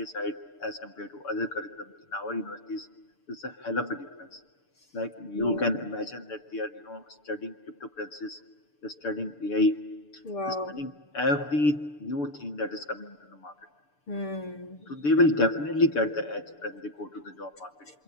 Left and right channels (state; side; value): late; right; 6.8 ms